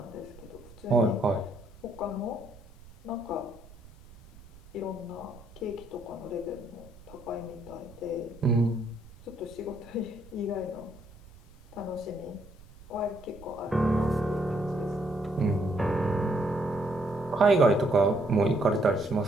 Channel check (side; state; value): right; noise; rumble, 21 dB below the sound